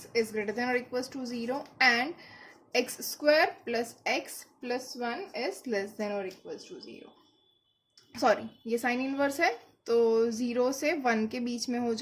is greater than और equals to 0 and X square plus x plus 1 is less than और इक्वल्स टू 0. सॉरी, ये साइन इनवर्स है तो 0 से 1 के बीच में हो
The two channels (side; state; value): both; identical; correlation 1.00